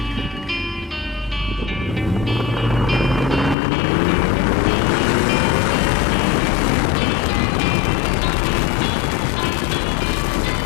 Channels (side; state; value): right; drops out; at 3.6 s